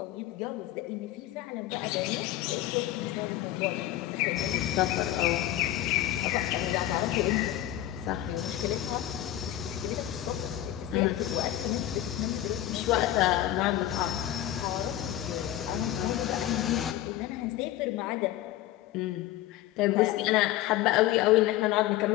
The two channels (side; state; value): right; quieter; 13.6 dB